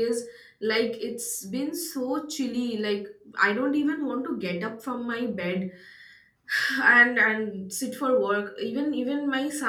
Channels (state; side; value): identical; both; correlation 1.00